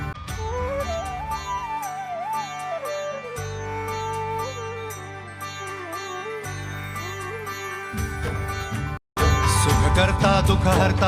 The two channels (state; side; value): identical; both; correlation 1.00